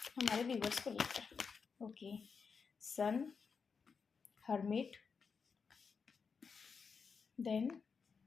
हमारे व्यूवर्स को लेकर। Okay sun, hermit, then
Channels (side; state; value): right; quieter; 5.6 dB